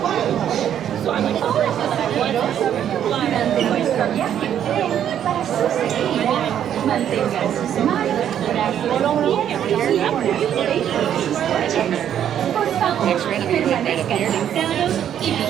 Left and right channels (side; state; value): left; quieter; 9.9 dB